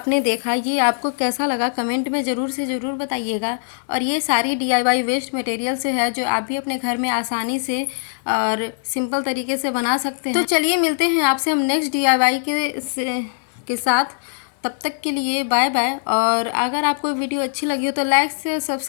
देखा, ये आपको कैसा लगा कमेंट में ज़रूर से ज़रूर बताइएगा। और ये सारी DIY वेस्ट मटेरियल से है, जो आप भी अपने घर में आसानी से और सिंपल तरीके से बना सकते हैं। तो चलिए मिलते हैं आपसे हम नेक्स्ट DIY के साथ। तब तक के लिए बाय बाय। और अगर आपको वीडियो अच्छी लगी हो तो लाइक से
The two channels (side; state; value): right; silent; digital silence